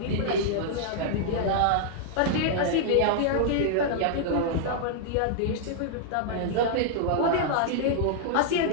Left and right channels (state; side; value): different; both; correlation -0.01